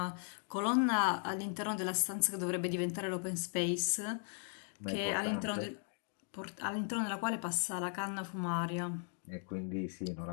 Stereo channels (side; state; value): right; silent; 53 dB below the other